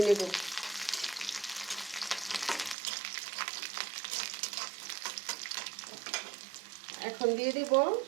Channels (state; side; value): drops out; left; at 2.8 s